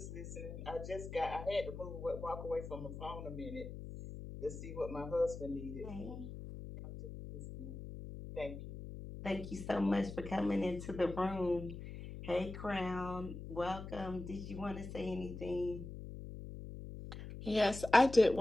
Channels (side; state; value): left; noise; hum, 10 dB below the sound